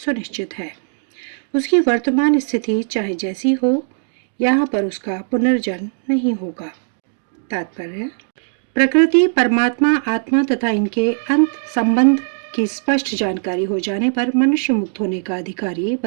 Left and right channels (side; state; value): left; silent; digital silence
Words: है। उसकी वर्तमान स्थिति चाहे जैसी हो, यहाँ पर उसका पुनर्जन्म नहीं होगा। तात्पर्य, प्रकृति, परमात्मा, आत्मा तथा इनके अंत संबंध की स्पष्ट जानकारी हो जाने पर मनुष्य मुक्त होने का अधिकारी